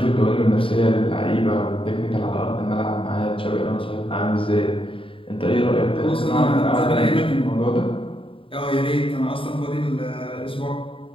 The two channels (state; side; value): late; right; 0.26 ms